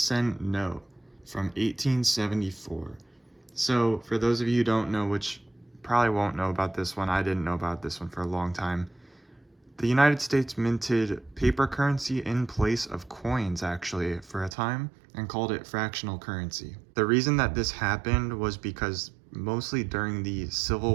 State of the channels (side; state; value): left; drops out; at 14.6 s